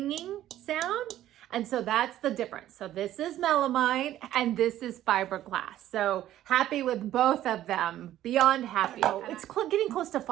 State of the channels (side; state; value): left; quieter; 13.0 dB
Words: sound. And so that's the difference. So this is melamine and this is fiberglass. So happy with both of them, beyond happy. Oh, it's getting close to